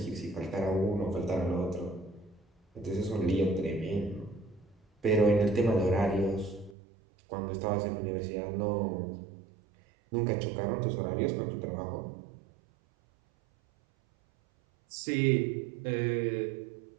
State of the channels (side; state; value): left; drops out; at 6.8 s